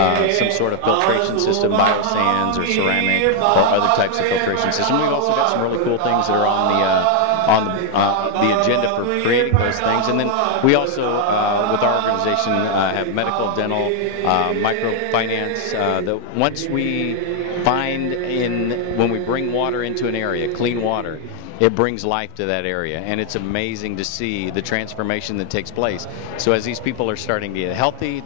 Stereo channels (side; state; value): both; different; correlation 0.00